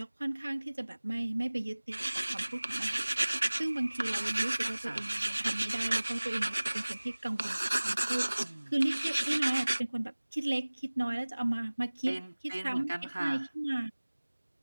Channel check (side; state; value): both; inverted; correlation -1.00